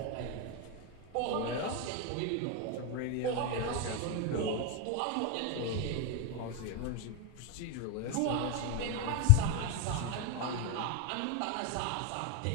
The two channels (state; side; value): different; both; correlation 0.01